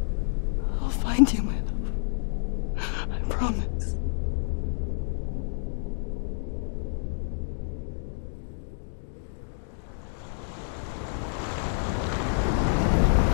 I'll find you, my love. I promise.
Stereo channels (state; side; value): silent; right; digital silence